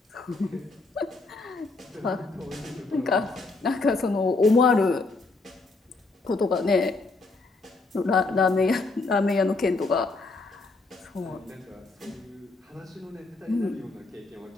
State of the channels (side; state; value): right; quieter; 3.5 dB